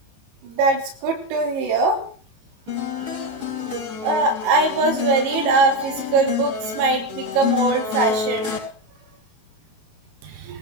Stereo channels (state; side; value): late; left; 18 ms